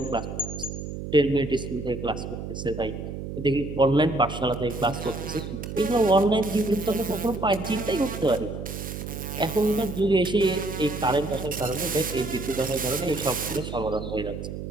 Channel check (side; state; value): right; noise; hum, 7 dB below the sound